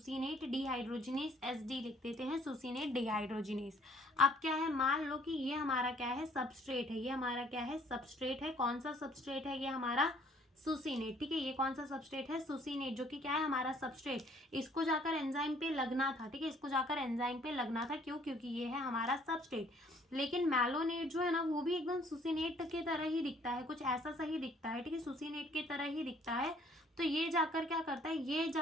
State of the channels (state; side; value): normal; both; correlation 0.60